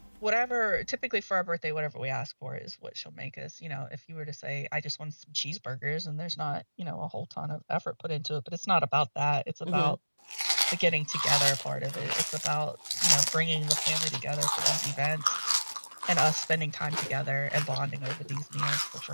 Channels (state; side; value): inverted; both; correlation -1.00